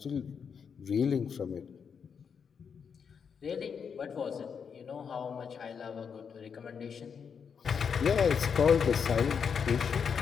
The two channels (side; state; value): right; quieter; 6.6 dB